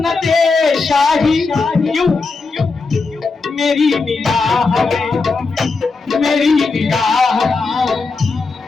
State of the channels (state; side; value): quieter; right; 4.2 dB